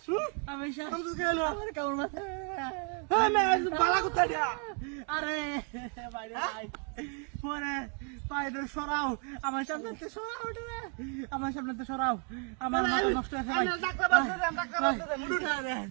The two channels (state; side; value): quieter; left; 39.7 dB